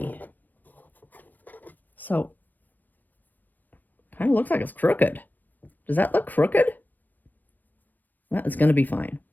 So, kind of looks like it's crooked. Does that look crooked? Well, it's going to be fine.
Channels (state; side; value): late; right; 0.088 ms